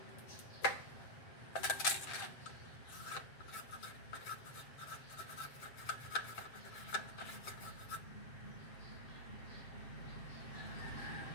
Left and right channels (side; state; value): right; late; 7.6 ms